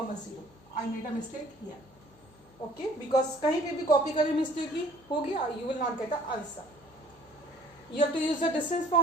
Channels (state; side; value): noise; left; hum, 28 dB below the sound